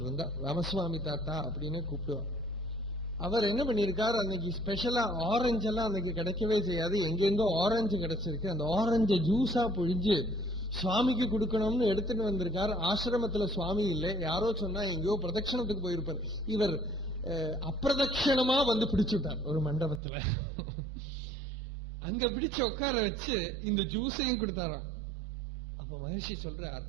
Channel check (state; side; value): drops out; left; at 20.0 s